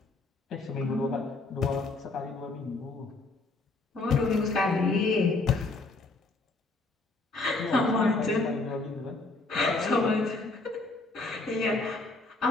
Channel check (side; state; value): right; quieter; 3.3 dB